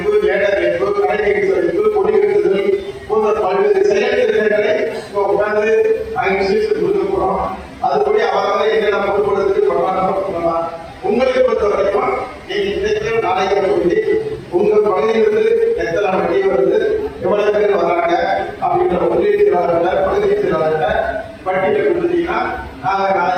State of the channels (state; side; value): identical; both; correlation 1.00